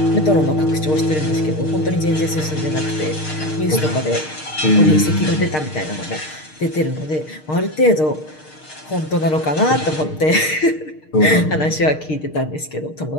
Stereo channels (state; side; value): late; right; 6.5 ms